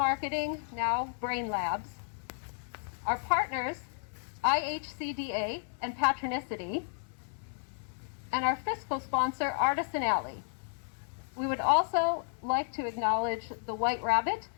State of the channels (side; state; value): right; silent; 56 dB below the other